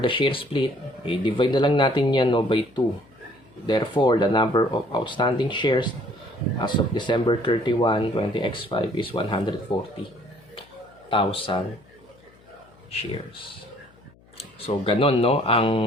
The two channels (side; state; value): left; noise; hum, 28 dB below the sound